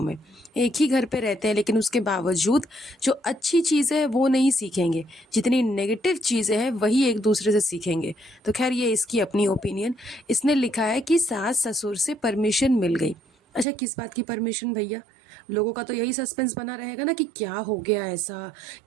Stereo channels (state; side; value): drops out; left; at 13.7 s